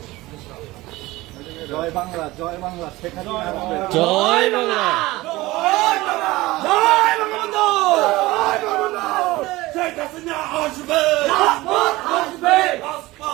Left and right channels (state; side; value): quieter; left; 19.4 dB